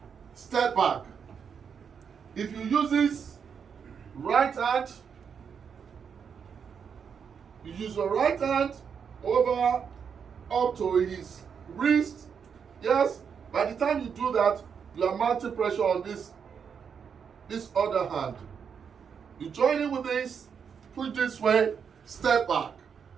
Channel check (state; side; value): quieter; left; 6.8 dB